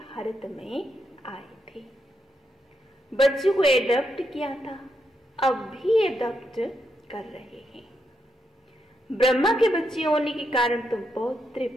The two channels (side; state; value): both; normal; correlation 0.81